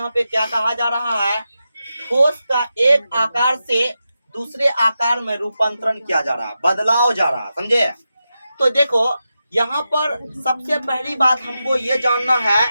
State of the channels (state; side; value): inverted; both; correlation -0.90